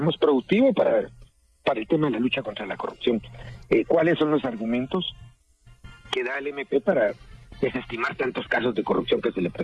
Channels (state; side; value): identical; both; correlation 1.00